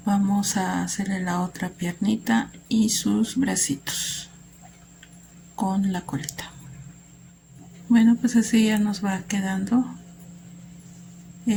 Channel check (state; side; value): identical; both; correlation 1.00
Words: vamos a hacerle la otra piernita y sus bracitos. con la colita. Bueno, pues así ya nos va quedando